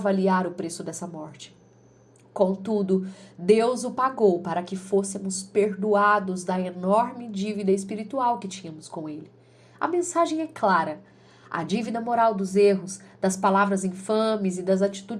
o preço dessa morte. Contudo, Deus o pagou para que fôssemos perdoados da enorme dívida espiritual que tínhamos com ele. A mensagem é clara. A dívida moral dos erros, das palavras infames e das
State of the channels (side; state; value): both; identical; correlation 1.00